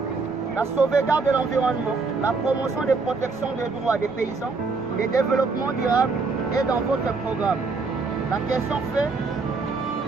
La sauvegarde de l'environnement, la promotion des protections des droits des paysans, le développement durable est dans votre programme. La question fait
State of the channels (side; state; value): left; quieter; 4.2 dB